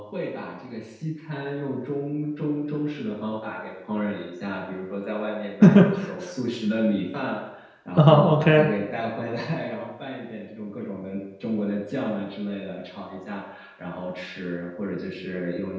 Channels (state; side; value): identical; both; correlation 1.00